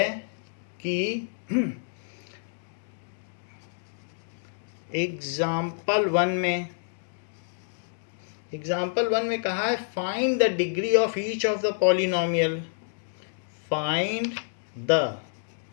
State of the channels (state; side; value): silent; right; digital silence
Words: कि एग्जाम्पल वन में कहा है find the degree of each of the polynomial, find the